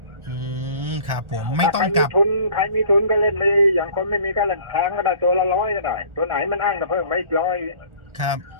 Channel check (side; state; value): left; late; 1.4 ms